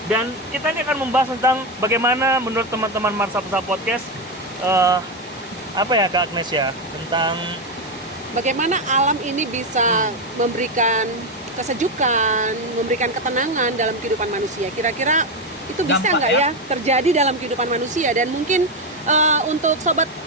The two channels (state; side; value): normal; both; correlation 0.10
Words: Dan kita ini akan membahas tentang bagaimana menurut teman-teman Mersapsa Podcast, Kak Agnes ya, tentang bagaimana alam ini bisa memberikan kesejukan, memberikan ketenangan dalam kehidupan manusia. Kira-kira itu bisa nggak ya terjadi dalam kehidupan manusia? Dan mungkin untuk Sobat